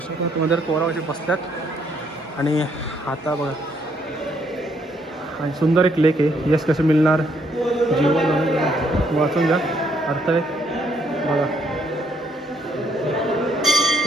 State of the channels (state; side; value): normal; both; correlation 0.70